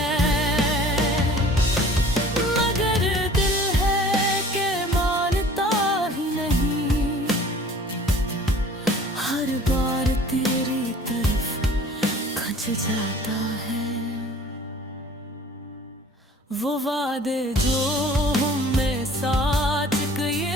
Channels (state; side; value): normal; both; correlation 0.49